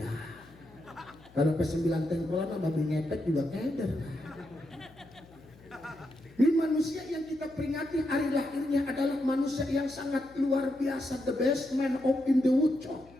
Kalau ke 9 tengkolan sama babi ngepet juga keder. Ini manusia yang kita peringati hari lahirnya adalah manusia yang sangat luar biasa, the best man of in the woodshop.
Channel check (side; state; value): left; noise; hum, 24 dB below the sound